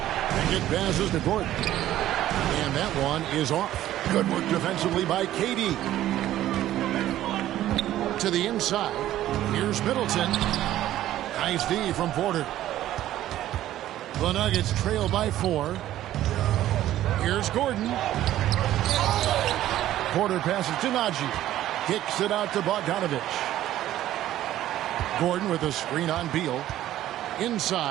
And it passes to Gordon. And that one is off. Good work defensively by KD. To the inside. Here's Middleton. Nice D from Porter. The Nuggets trail by 4. Here's Gordon. Porter passes to Najee. Kicks it out to Bogdanovich. Gordon with a screen on Beal.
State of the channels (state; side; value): quieter; left; 13.4 dB